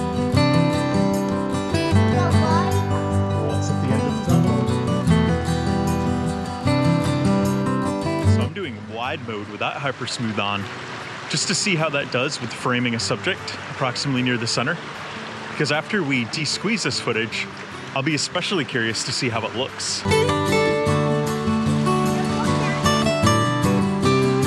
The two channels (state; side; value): identical; both; correlation 1.00